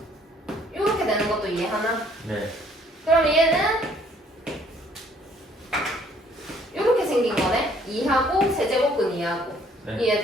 이렇게 되는 것도 이해하나? 네. 그럼 얘는 이렇게 생긴 거네. 2하고 세제곱근 2하고 네.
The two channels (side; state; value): both; normal; correlation 0.61